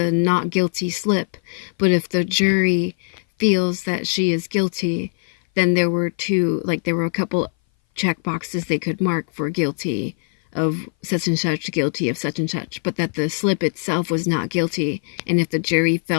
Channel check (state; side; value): silent; right; 59 dB below the other